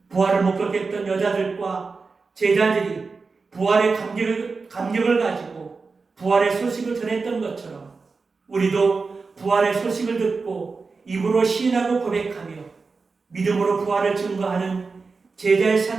부활을 못 겪겠던 여자들과 제자들이 부활의 감격을 가지고 부활의 소식을 전했던 것처럼 우리도 부활의 소식을 듣고 입으로 시인하고 고백하며 믿음으로 부활을 증거하는 제자의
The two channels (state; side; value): quieter; left; 4.4 dB